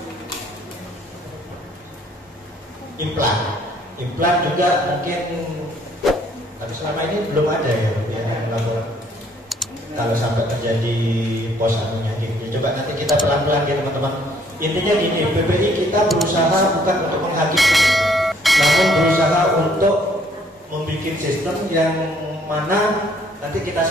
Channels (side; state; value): both; normal; correlation 0.63